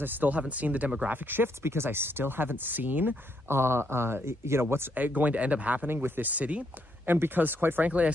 I still haven't seen the demographic shifts, because I still haven't seen, what's going to end up happening with this city. And because, quite frankly, I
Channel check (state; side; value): normal; both; correlation 0.75